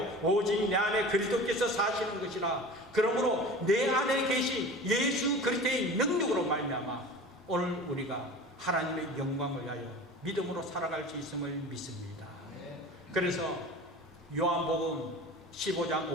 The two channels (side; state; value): both; normal; correlation 0.37